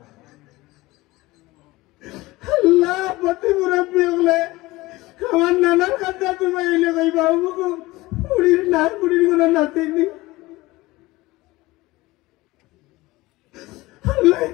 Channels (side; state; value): right; quieter; 19.9 dB